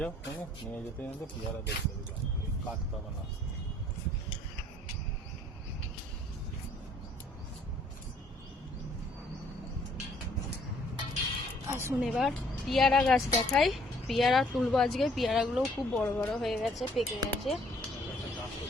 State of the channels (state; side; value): normal; both; correlation 0.61